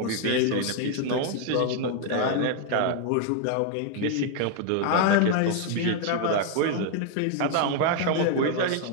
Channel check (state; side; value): different; both; correlation 0.00